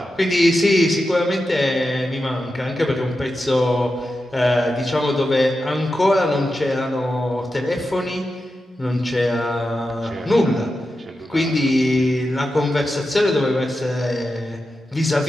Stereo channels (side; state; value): both; normal; correlation 0.90